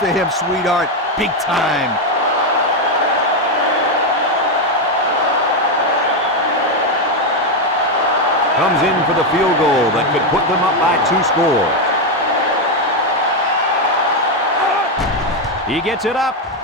him, sweetheart. Big time. Comes in for the field goal that could put them up by 2 scores. He gets it up,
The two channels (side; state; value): both; normal; correlation 0.06